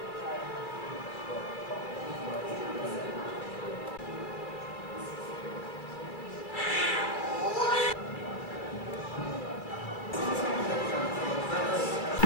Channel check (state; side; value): late; right; 2.4 ms